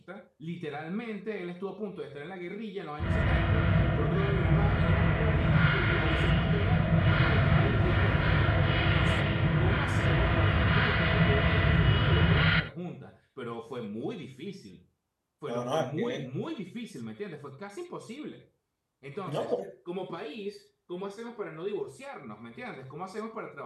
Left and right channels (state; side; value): identical; both; correlation 1.00